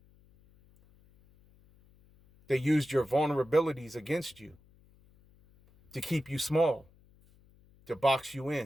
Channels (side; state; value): left; noise; hum, 29 dB below the sound